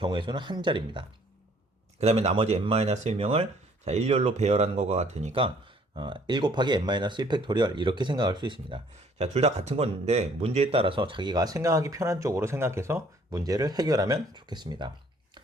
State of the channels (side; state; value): both; normal; correlation 0.60